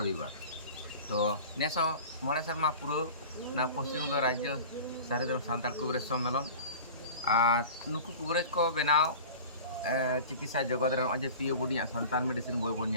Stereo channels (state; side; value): inverted; both; correlation -0.38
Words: रविवार तो नेसो मोड़े शर्मा पुरो ना पश्चिम बंग राज्य सारदम सान्ताल कुबरेज सम्मेलन और नुकु कुबरेज को बनाव चिकित्सा जगत रे अजे पियो बुडिया संतान मेडिसिन बोय बोन